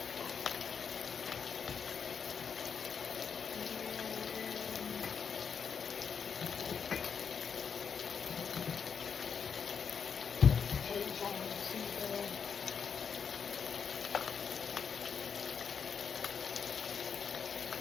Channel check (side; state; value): right; quieter; 6.6 dB